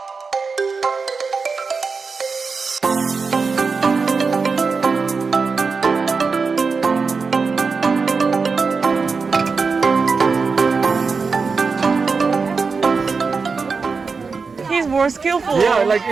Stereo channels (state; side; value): quieter; left; 4.8 dB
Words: He's more skillful. Yeah, like